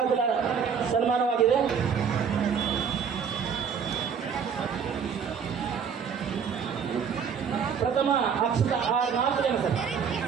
ಸನ್ಮಾನವಾಗಿದೆ. ಪ್ರಥಮ ಅಕ್ಷತ 4 ಜನ ಸರ್,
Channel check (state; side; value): quieter; left; 6.8 dB